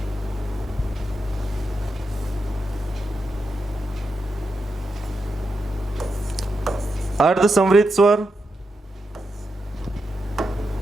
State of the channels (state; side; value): normal; both; correlation 0.86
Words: अर्ध संवृत स्वर,